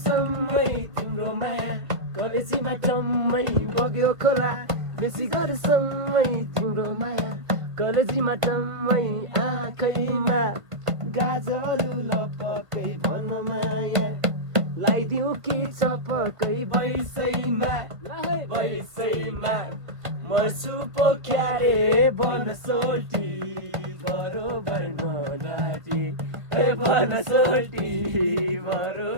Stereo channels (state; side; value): late; left; 1.7 ms